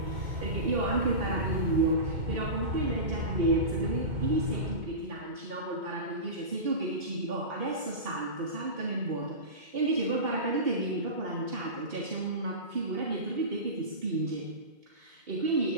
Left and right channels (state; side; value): late; left; 2.2 ms